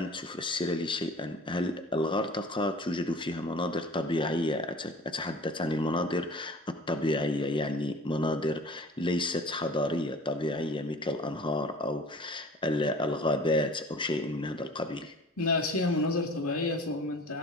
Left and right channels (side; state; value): both; normal; correlation 0.44